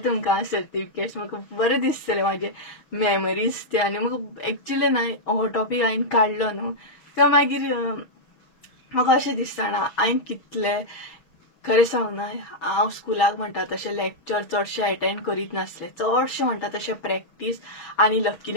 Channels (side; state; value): right; late; 6.0 ms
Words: तुमकां सर्टिफिकेट्स. म्हाका बरें दिसतलें म्हाजे मेमरीज ते. आनी म्हाका एक्चुअली न्हय हो टॉपीक हांवें काडलो न्हू तें मागीर म्हाका अशें दिसता ना हांवें कितलें खरें सांग न्हय हांव स्कुलाक म्हणटा तशें लेक्चर चडशें अटेंड करीत नासलें. चडशें म्हणटा तशें प्रॅक्टीस. आनी